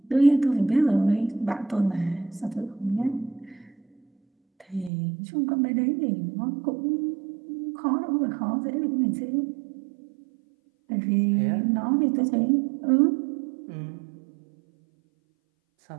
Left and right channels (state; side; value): drops out; left; at 4.9 s